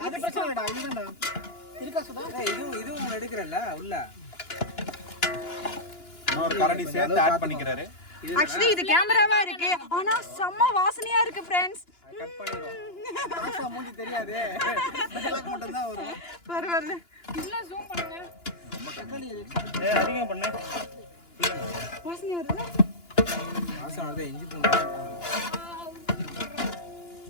அது பிரச்சனை இல்லடா இதுதான்டா இருக்கா சுதா இதுவும் எடுக்கறல்ல உள்ள இன்னொரு கரண்டி சேர்த்து ஆட் பண்ணிக்கிறாரு ஆக்சுவலி இது கேமராவா இருக்கு ஆனா செம்ம வாசனையா இருக்கு फ्रेंड्स கட் பண்ணிரோம் ஆசா மூஞ்சி தெரியாதே டயலாக் மட்டும் தான் வரும் பரவாயில்ல இல்ல ஜூம் பண்ணுங்க தக்காளி எக்ஸ்ட்ரா ஏய் அதிகம் பண்ணு வாசனையா இருக்குல்ல ஆசா வரதே இஞ்சி பூண்டு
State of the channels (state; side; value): late; right; 2.9 ms